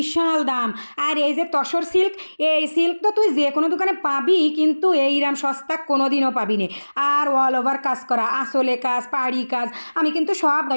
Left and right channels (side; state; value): both; inverted; correlation -1.00